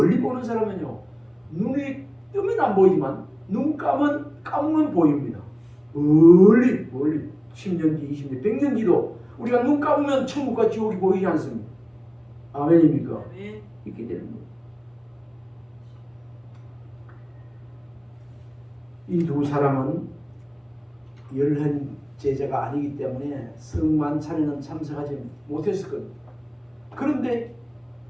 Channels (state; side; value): identical; both; correlation 1.00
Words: 보는 사람은요, 눈이 뜨면 안 보이지만 눈 감으면 보입니다. 멀리 10년 뒤, 20년, 100년 뒤도 우리가 눈 감으면 천국과 지옥이 보이지 않습니까? 아멘입니까? 아멘. 이렇게 되는 거예요. 이 두 사람은 열한 제자가 아니기 때문에 성만 차례는 참석하지 못했을 겁니다. 그런데